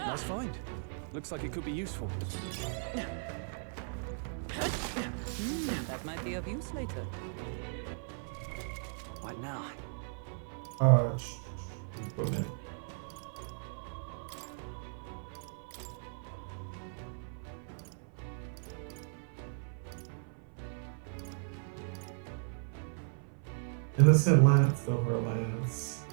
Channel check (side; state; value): left; silent; 54 dB below the other